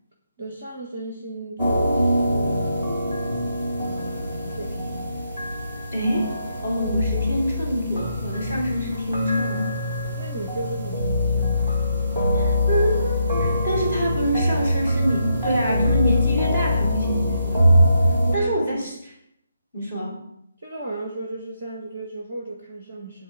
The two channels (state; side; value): inverted; both; correlation -0.78